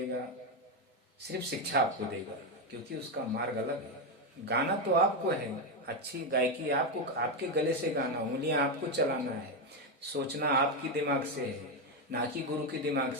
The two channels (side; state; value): both; normal; correlation 0.07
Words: सिर्फ शिक्षा आपको देगा, क्योंकि उसका मार्ग अलग है। गाना तो आपको है, अच्छी गायकी आपको, आपके गले से गाना, उंगलियां आपको चलाना है, सोचना आपकी दिमाग से है, ना कि गुरु के दिमाग